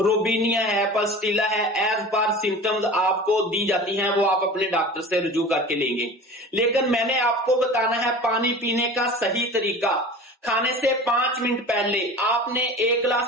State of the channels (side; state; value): both; normal; correlation 0.37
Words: روبینیا ہے، پلسٹیلا ہے، ایز پر سمپٹمز آپ کو دی جاتی ہیں، وہ آپ اپنے ڈاکٹر سے رجوع کر کے لیں گے۔ لیکن میں نے آپ کو بتانا ہے پانی پینے کا صحیح طریقہ۔ کھانے سے 5 منٹ پہلے آپ نے 1